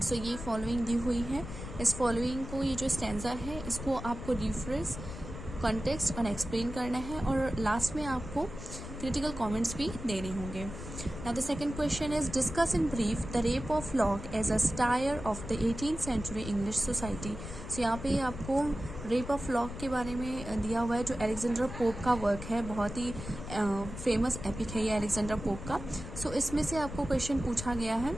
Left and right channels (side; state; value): left; noise; rumble, 10 dB below the sound